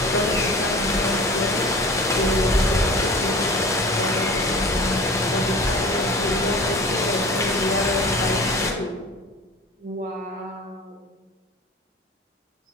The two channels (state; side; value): normal; both; correlation 0.39